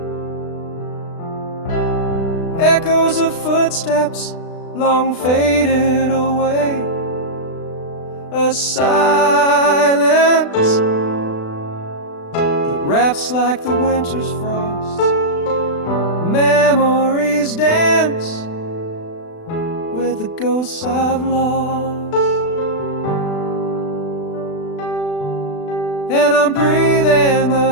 echoes of footsteps long faded away. A silence that wraps like the winter's frost. Memories dance with the ghosts I've lost. And I'm breathing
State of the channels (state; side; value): late; right; 36 ms